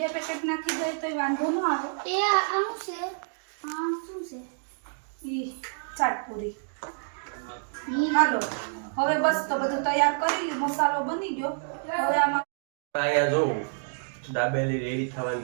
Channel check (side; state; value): left; silent; digital silence